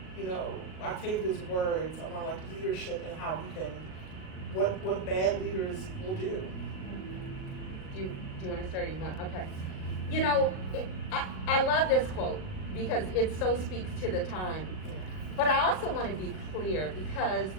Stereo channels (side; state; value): right; late; 38 ms